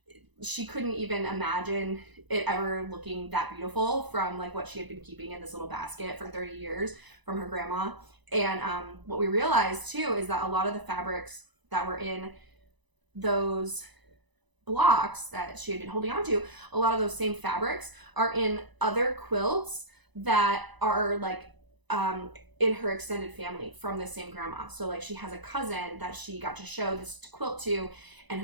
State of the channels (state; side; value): late; left; 1.0 ms